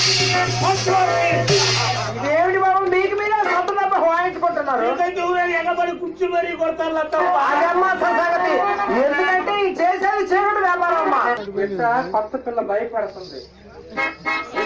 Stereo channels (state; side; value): identical; both; correlation 1.00